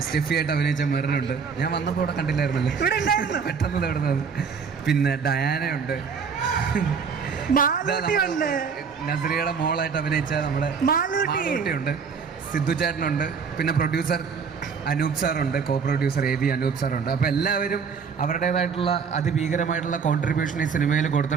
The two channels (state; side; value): quieter; left; 5.9 dB